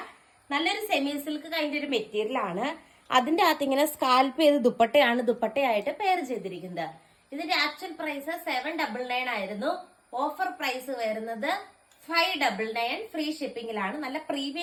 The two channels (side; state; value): both; identical; correlation 1.00